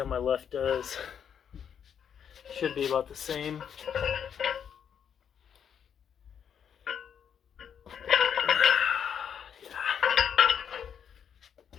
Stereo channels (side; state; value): right; quieter; 8.0 dB